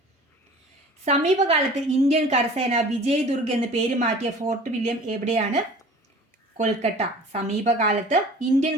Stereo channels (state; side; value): normal; both; correlation 0.44